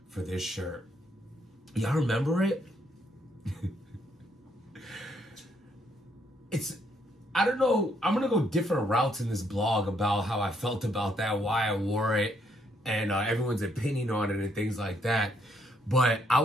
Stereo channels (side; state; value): both; normal; correlation 0.72